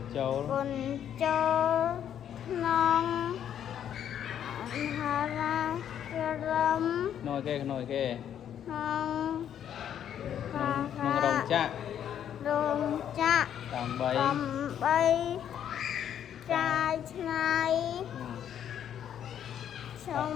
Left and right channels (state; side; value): quieter; right; 9.7 dB